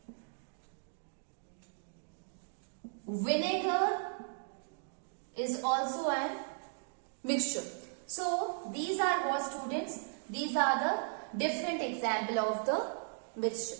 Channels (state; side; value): silent; left; digital silence